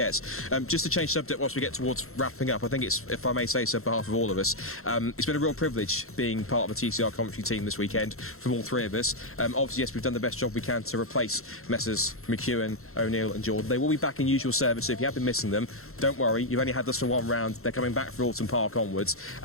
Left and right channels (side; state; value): right; late; 0.62 ms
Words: Just to change subject whilst we get towards wrapping up, I think it's, if I may say so on behalf of all of us, it's been a real privilege being part of the TCR commentary team this weekend from all 3 of us. Obviously, yes, we've done the best job we can to replace Messrs McEwen, O'Neill and Jordan. They will be back in usual service, so if you have been missing them, don't worry, you've only had us for 1 round. They're coming back for Alton Park onwards,